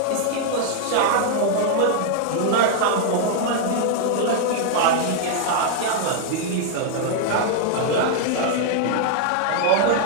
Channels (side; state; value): both; different; correlation 0.00